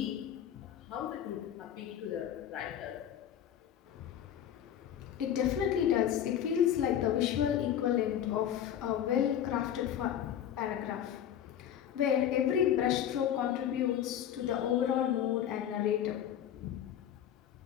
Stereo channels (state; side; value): quieter; right; 10.1 dB